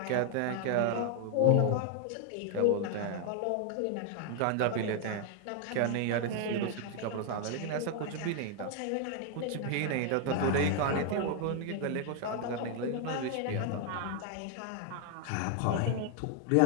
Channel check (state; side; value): different; both; correlation 0.00